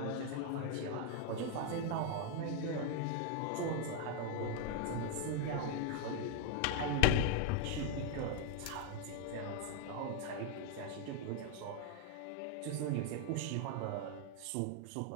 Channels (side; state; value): both; different; correlation 0.00